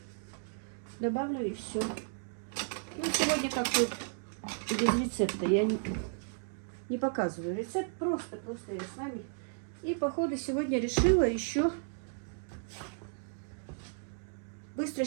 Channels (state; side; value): silent; left; digital silence